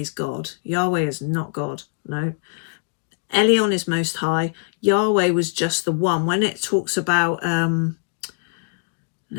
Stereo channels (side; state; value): right; silent; digital silence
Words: God. Yahweh is not God. No. Elion is Most High. Yahweh was just the one. When it talks about, now